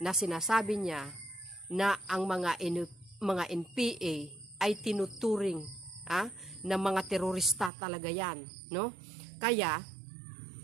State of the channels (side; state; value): left; drops out; at 7.7 s